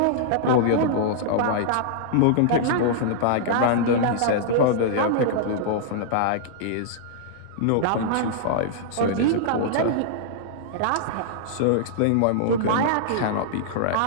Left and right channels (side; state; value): both; different; correlation -0.01